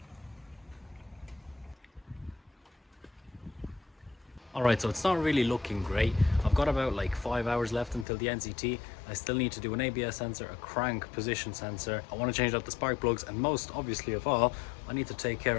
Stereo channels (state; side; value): drops out; right; at 8.1 s